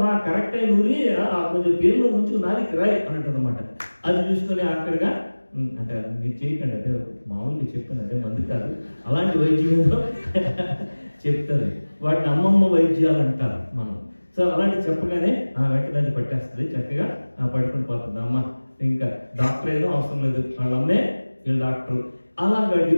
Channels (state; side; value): inverted; both; correlation -1.00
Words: కరెక్ట్ అయిన ఊరి కొంచెం పేరులో ముంచుకు నాలికి రాయి అని అంటుంది అనమాట. అది చూసుకొని ఆఖరిగా అంటే మీరు చేయకండి, అదే మామూలుగా చెప్పాను, అదే మంది కాదు, అలాంటి వైద్యంలో చెప్తుంది. వాటిని అమ్మమ్మ వైద్యాలు అంటారు మనం. సో అలాంటి చెప్పగానే వెంటనే పట్టేస్తుంది, చక్కగా పడుకుని పోతుంది అమ్మ. ఇంకా డాక్టర్ ఏదో అవసరం లేదు, వాళ్ళమ్మే వీళ్ళు డాక్టర్. అలాగా